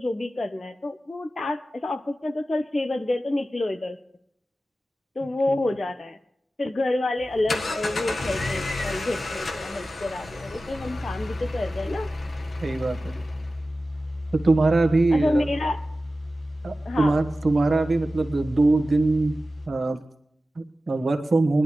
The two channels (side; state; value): both; normal; correlation 0.95